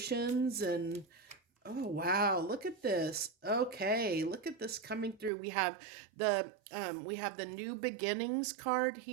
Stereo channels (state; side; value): drops out; left; at 5.3 s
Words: and oh wow, look at this. Okay, look at this coming through. We have the new beginnings card